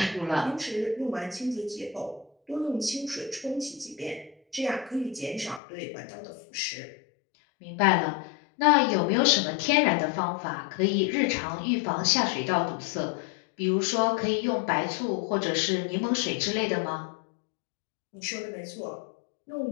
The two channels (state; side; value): drops out; right; at 5.6 s